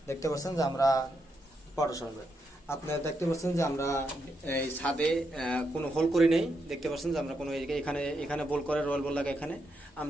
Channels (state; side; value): normal; both; correlation 0.81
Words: দেখতে পাচ্ছেন যে আমরা আপনারা দেখতে পাচ্ছেন যে আমরা এই ছাদে কোনো হোল করি নেই। দেখতে পাচ্ছেন যে আমরা কোনো এখানে বল করে রয়্যাল বল লাগে, এখানে